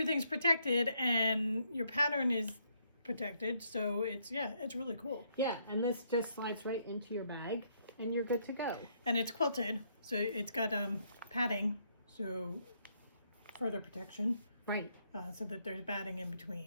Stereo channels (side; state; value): both; inverted; correlation -0.72